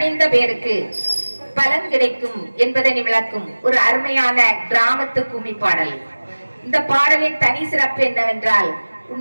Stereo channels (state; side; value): inverted; both; correlation -1.00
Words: பேருக்கு பலன் கிடைக்கும் என்பதனை விளக்கும் ஒரு அருமையான கிராமத்து கும்மி பாடல். இந்த பாடலின் தனி சிறப்பு என்னவென்றால்,